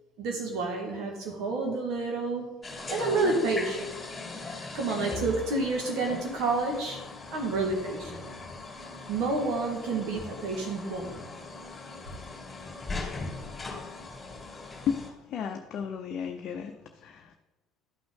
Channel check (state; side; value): normal; both; correlation 0.40